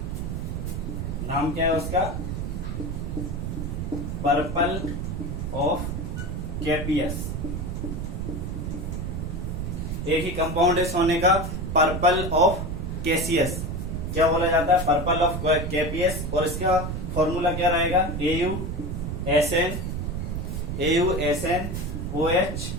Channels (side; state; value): right; noise; rumble, 3 dB below the sound